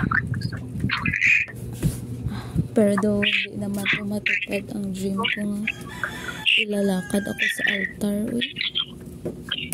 Pero daw hindi naman matupad ang dream ko nga. Ilalakad ako sa altar. Uy.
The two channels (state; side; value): identical; both; correlation 1.00